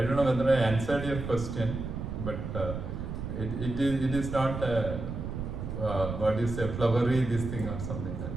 don't know whether I answered your question, but it is not what is a flowery this thing or something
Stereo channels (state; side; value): noise; right; rumble, 6 dB below the sound